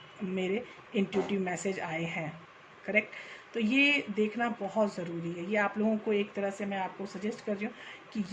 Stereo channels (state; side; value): identical; both; correlation 1.00